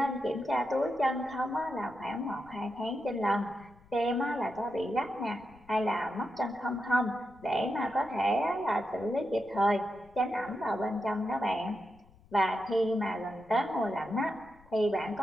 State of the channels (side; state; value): left; noise; rumble, 27 dB below the sound